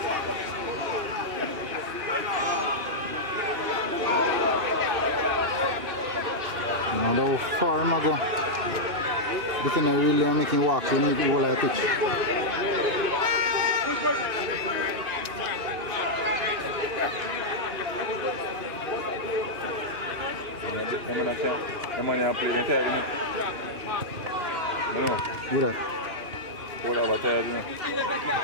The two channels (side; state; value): left; late; 2.8 ms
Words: How far am I go? This is really making walks in the whole of the pitch. Who that? What about tired, you know?